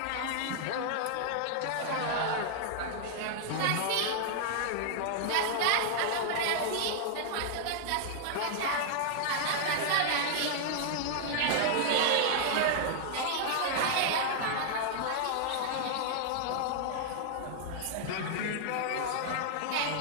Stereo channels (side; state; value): both; different; correlation -0.01